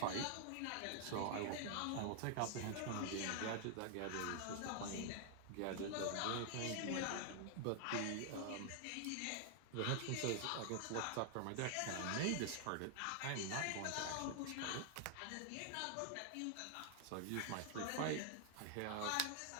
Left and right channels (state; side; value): different; both; correlation 0.00